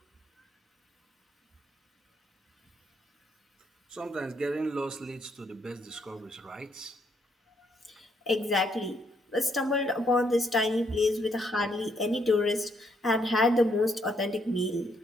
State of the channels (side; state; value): both; normal; correlation 0.73